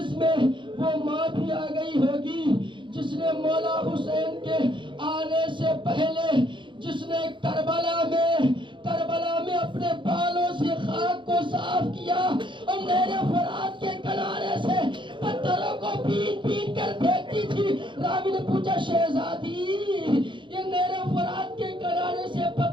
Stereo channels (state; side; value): late; left; 0.23 ms